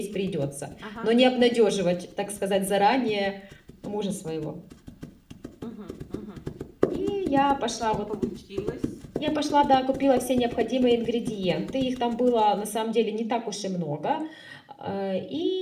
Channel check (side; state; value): both; identical; correlation 1.00